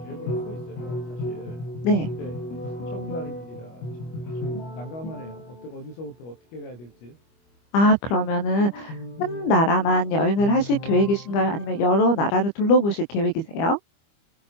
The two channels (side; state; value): right; late; 25 ms